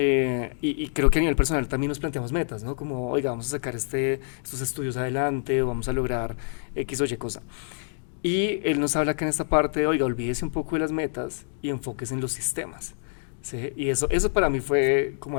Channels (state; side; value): silent; right; digital silence